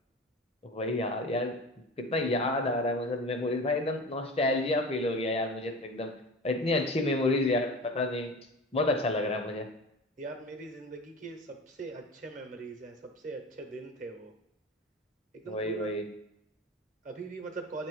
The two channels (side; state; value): both; normal; correlation 0.34